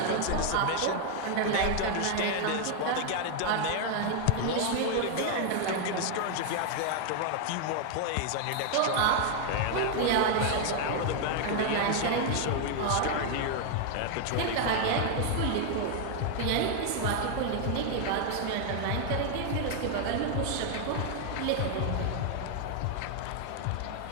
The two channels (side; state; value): both; different; correlation 0.00